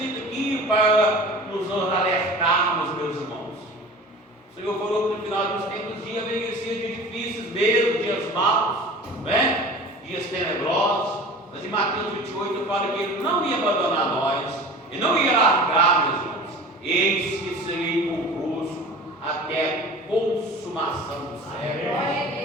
aqui para nos alertarmos, meus irmãos. O Senhor falou que no final dos tempos dias venham dias difíceis mesmo, dias maus, né? Dias tenebrosos. Mas em Mateus 28 fala que Ele não ia abandonar nós, Ele não ia largar, meus irmãos. Eis que serei convosco até a consumação do século.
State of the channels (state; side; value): normal; both; correlation 0.39